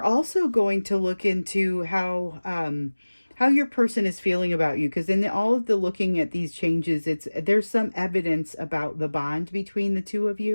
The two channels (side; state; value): both; inverted; correlation -1.00